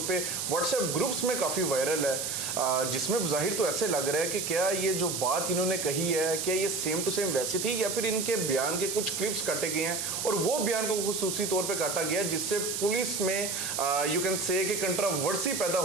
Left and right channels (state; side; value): noise; right; hiss, 2 dB below the sound